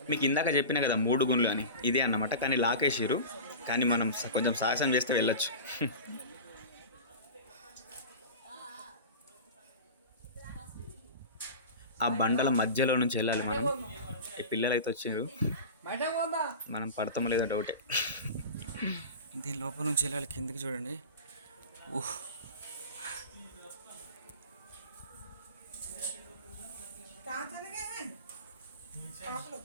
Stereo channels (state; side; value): inverted; both; correlation -0.31